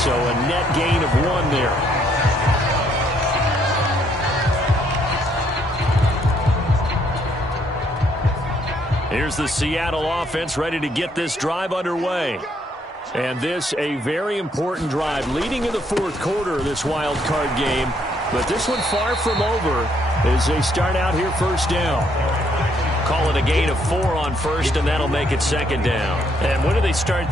a net gain of 1 there. Here's the Seattle offense ready to get this drive underway. And this a very important drive leading in the fourth quarter of this wild card game. But this one far from over as they start out here first down. Call it a gain of 4 on first, and that'll make it second down. And when do they start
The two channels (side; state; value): both; normal; correlation 0.70